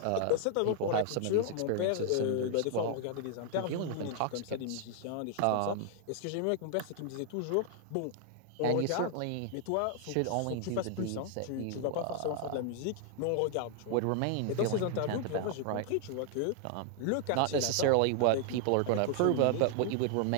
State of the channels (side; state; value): both; different; correlation 0.00